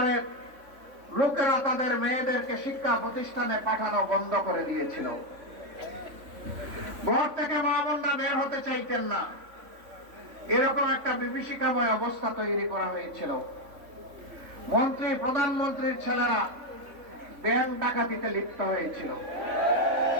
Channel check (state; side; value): late; left; 3.5 ms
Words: লোকেরা তাদের মেয়েদেরকে শিক্ষা প্রতিষ্ঠানে পাঠানো বন্ধ করে দিয়েছিল। ঘর থেকে মা বোনরা বের হতে চাইতেন না, এরকম একটা বিভীষিকাময় অবস্থা তৈরি করা হয়েছিল। মন্ত্রী, প্রধানমন্ত্রীর ছেলেরা ব্যাংক ডাকাতিতে লিপ্ত হয়েছিল।